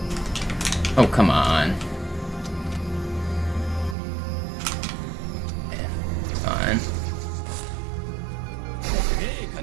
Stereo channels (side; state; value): left; drops out; at 4.0 s